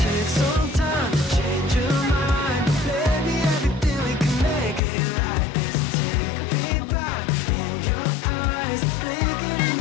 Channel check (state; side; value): drops out; right; at 4.8 s